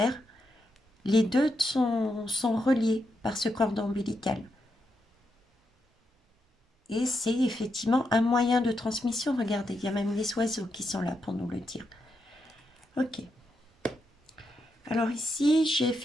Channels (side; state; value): both; normal; correlation 0.83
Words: Les deux sont reliés par ce cordon ombilical. Et c'est effectivement un moyen de transmission. Regardez, il y a même les oiseaux qui sont là pour nous le dire. Ok. Alors ici, j'ai